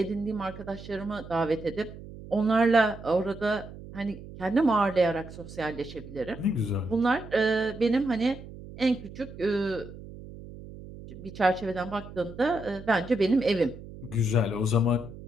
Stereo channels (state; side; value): noise; right; hum, 15 dB below the sound